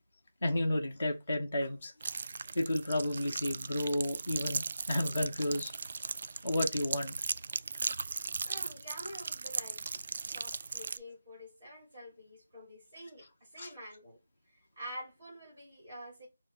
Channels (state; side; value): inverted; both; correlation -0.90